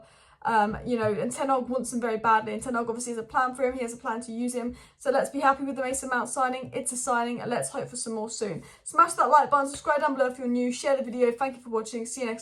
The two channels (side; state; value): both; identical; correlation 1.00